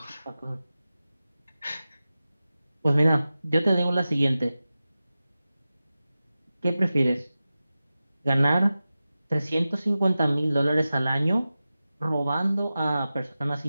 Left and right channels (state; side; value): inverted; both; correlation -0.94